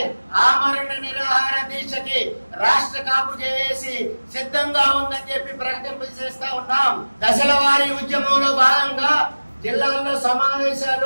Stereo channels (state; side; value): inverted; both; correlation -1.00